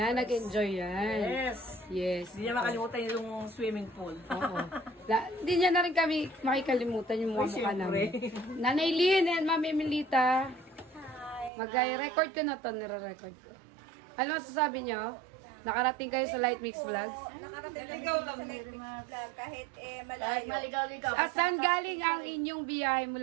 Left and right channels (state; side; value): drops out; left; at 11.5 s